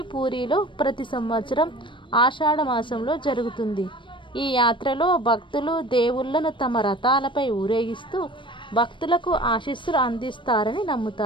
పూరిలో ప్రతి సంవత్సరం ఆషాఢ మాసంలో జరుగుతుంది. ఈ యాత్రలో భక్తులు దేవుళ్లను తమ రథాలపై ఊరేగిస్తూ భక్తులకు ఆశీస్సులు అందిస్తారని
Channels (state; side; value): late; right; 0.24 ms